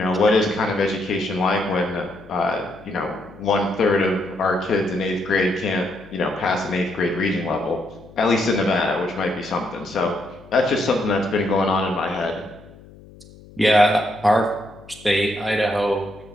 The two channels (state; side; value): noise; left; hum, 22 dB below the sound